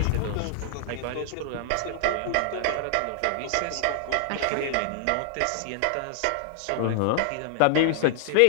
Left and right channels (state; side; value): different; both; correlation -0.01